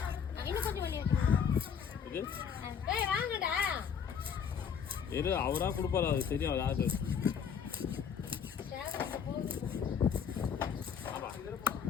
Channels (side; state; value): right; quieter; 7.3 dB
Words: இது இரு, அவரா கொடுப்பாரு, அது தெரியும். அதாவது